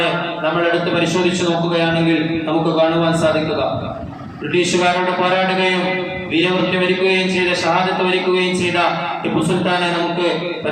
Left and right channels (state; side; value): identical; both; correlation 1.00